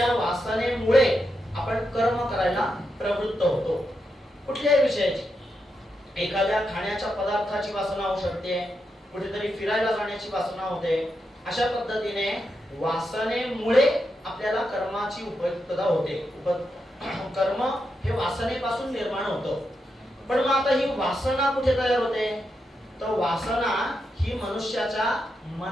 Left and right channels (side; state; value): both; normal; correlation 0.85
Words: वासनेमुळे आपण कर्म करायला प्रवृत्त होतो. कुठल्याही विषयाची, एखाद्या खाण्याच्या पदार्थाची वासना होऊ शकते, कुठेतरी फिरायला जाण्याची वासना होते. अशा पद्धतीने वासनेमुळे आपल्याला कर्माची उपयुक्तता होते. कर्म हे वासनेपासून निर्माण होतं. पण मग आता ही वासना कुठे तयार होते? तर वासना ही मनुष्याच्या